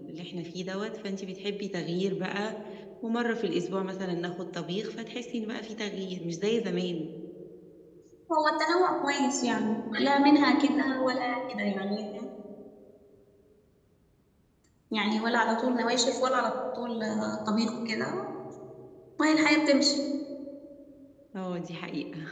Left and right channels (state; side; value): identical; both; correlation 1.00